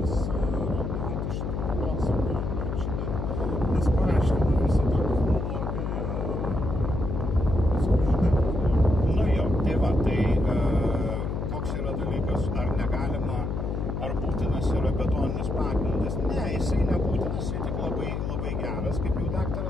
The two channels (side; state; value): left; noise; hum, 2 dB below the sound